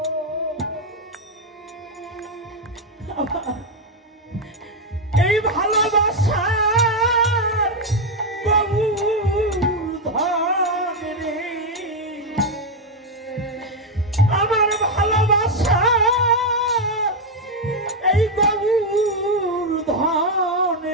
এই ভালোবাসা আমার ভালোবাসা এই গৌর ধন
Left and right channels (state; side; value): normal; both; correlation 0.04